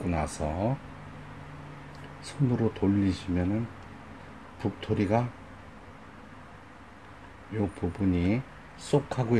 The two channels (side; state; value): both; identical; correlation 1.00